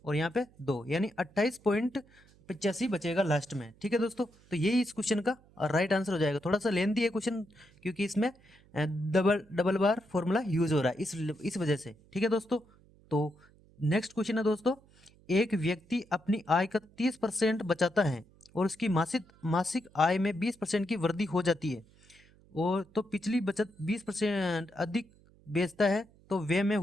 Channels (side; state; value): right; noise; hum, 28 dB below the sound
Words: और यहाँ पे 2, यानी 28.85 बचेगा लास्ट में। ठीक है दोस्तों, तो यही इस क्वेश्चन का राइट आंसर हो जाएगा। थोड़ा सा लेंथी है क्वेश्चन, क्योंकि इसमें डबल डबल बार फॉर्मूला यूज हो रहा है इस वजह से। ठीक है दोस्तों, तो नेक्स्ट क्वेश्चन है दोस्तों, एक व्यक्ति अपनी आय का 30% बचाता है और उसकी मासिक मासिक आय में 20% की वृद्धि हो जाती है, और तो पिछली बचत 20% अधिक बेचता है, तो व्यय में